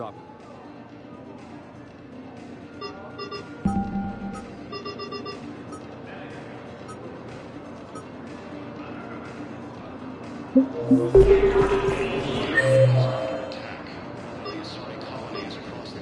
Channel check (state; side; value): identical; both; correlation 1.00